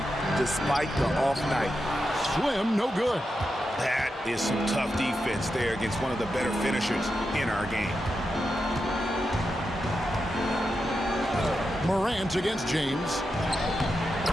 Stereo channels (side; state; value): both; normal; correlation 0.88